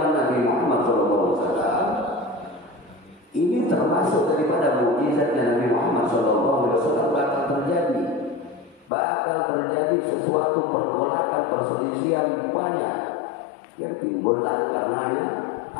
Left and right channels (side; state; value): right; drops out; at 8.9 s